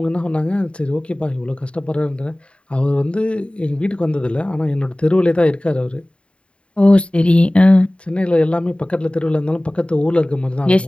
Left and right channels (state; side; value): late; right; 0.058 ms